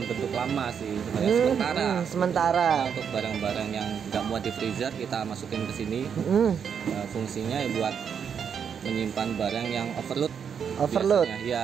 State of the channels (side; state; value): left; quieter; 7.4 dB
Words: bentuk lama sih, sebenarnya sementara. Nah, untuk barang-barang yang nggak muat di freezer kita masukin ke sini. Fungsinya ya buat menyimpan barang yang overload.